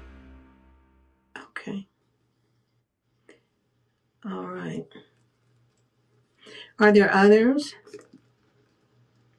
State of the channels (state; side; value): identical; both; correlation 1.00